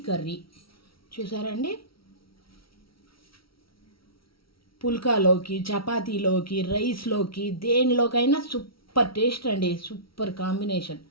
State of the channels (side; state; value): right; late; 0.75 ms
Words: కర్రీ చూసారండి. పుల్కాలోకి, చపాతీలోకి, రైస్లోకి, దేనిలోకైనా సూపర్ టేస్ట్ అండి. Super combination.